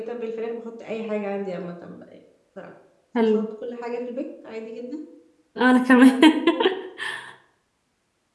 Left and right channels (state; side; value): identical; both; correlation 1.00